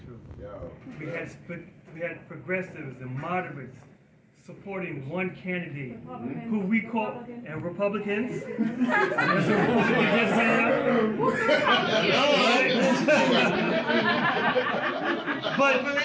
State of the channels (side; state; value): both; identical; correlation 1.00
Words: We had progressives and moderates supporting one candidate who we call, and Republicans. But